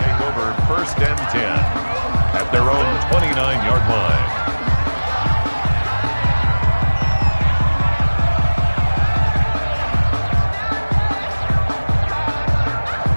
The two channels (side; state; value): both; inverted; correlation -1.00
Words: Take over 1st and 10 at their own 29-yard line.